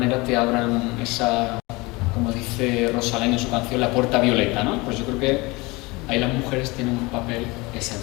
te abran esa, como dice Rosalén en su canción, la puerta violeta, ¿no? Pues yo creo que ahí las mujeres tienen un papel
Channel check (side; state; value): right; quieter; 23.9 dB